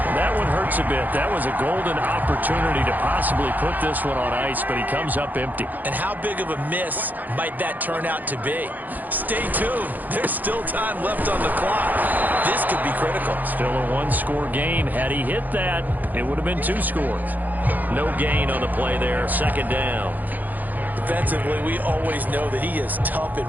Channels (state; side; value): late; left; 0.083 ms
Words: That one hurts a bit. That was a golden opportunity to possibly put this one on ice, but he comes up empty. And how big of a miss might that turn out to be? Stay tuned. There's still time left on the clock. This could be critical. Still a 1-score game. Had he hit that, it would have been 2 scores. No gain on the play there. Second down. Defensively, we always know that he is tough in